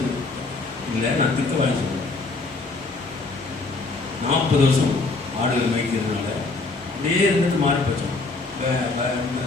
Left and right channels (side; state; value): right; quieter; 3.6 dB